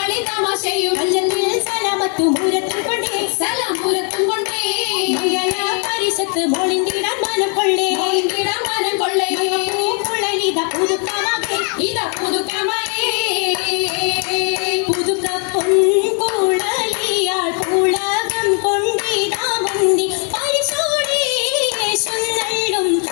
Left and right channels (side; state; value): right; quieter; 38.0 dB